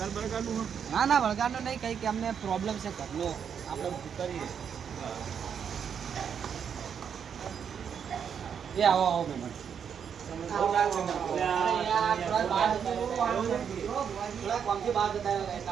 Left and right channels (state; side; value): quieter; left; 7.6 dB